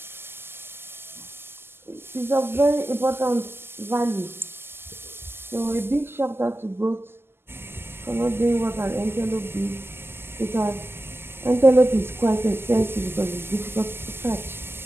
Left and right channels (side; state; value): left; late; 0.12 ms